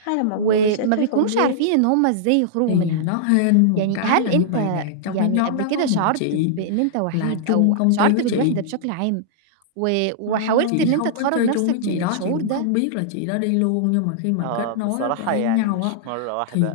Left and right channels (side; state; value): both; different; correlation -0.02